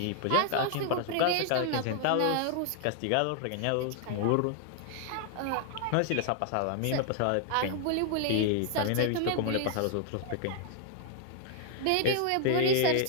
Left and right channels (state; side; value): different; both; correlation 0.00